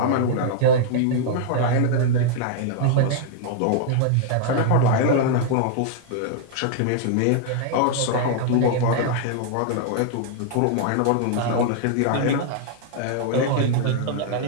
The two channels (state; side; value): different; both; correlation -0.01